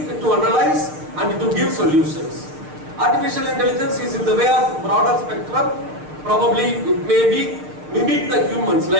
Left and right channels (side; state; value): left; late; 6.6 ms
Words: to analyze and to give solutions. Artificial intelligence is in the way of broader spectrum. Probably it may be mimic the humans,